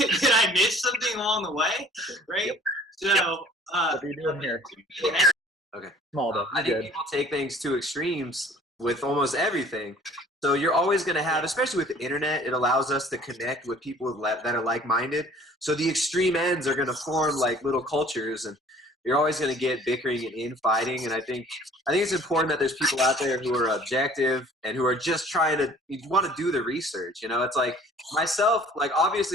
I miss something along the way? Right? So, what are you doing here? Okay. I think people take things to extremes with almost everything. So you're always going to have, especially with the internet, it allows us to connect with people that are like-minded. So the extreme ends are going to form like little cultures, and you're always going to get bickering and infighting. And I think it's important that there's people out there who are objective and who are just trying to want to do the research. It's like myself, like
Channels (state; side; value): normal; both; correlation 0.51